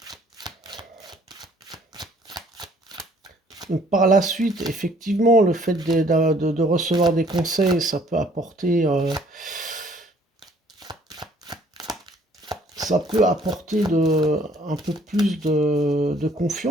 Donc, par la suite, effectivement, le fait de recevoir des conseils, ça peut apporter un peu plus de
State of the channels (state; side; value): normal; both; correlation 0.60